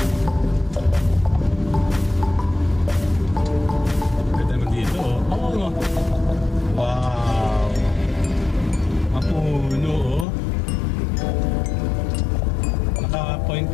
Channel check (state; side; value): drops out; right; at 10.2 s